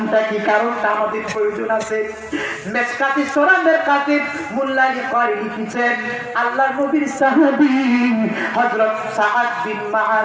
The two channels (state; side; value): identical; both; correlation 1.00